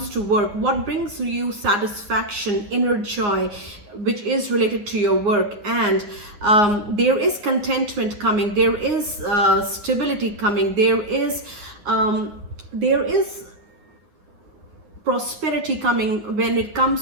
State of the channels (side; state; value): left; late; 9.7 ms